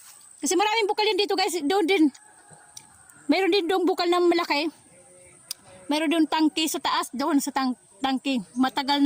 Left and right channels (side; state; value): both; identical; correlation 1.00